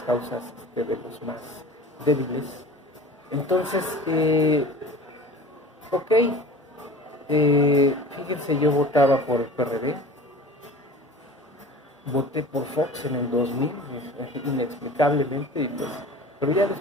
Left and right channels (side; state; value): both; normal; correlation 0.40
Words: causas de los más débiles. Entonces, fíjense, yo votaba por el PRD, voté por Fox en el 2000, inexplicablemente, pero ya